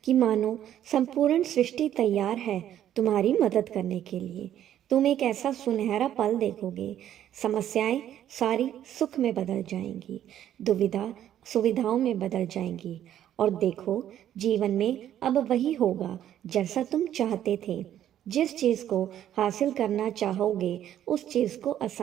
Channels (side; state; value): left; quieter; 11.2 dB